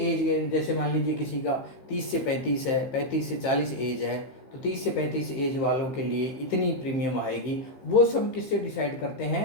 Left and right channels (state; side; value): late; right; 15 ms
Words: जैसे मान लीजिए किसी का 30 से 35 है, 35 से 40 एज है, तो 30 से 35 एज वालों के लिए इतनी प्रीमियम आएगी। वो सब किससे डिसाइड करते